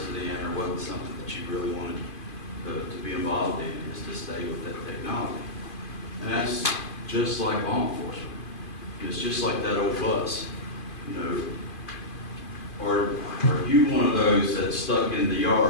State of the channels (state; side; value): late; right; 2.5 ms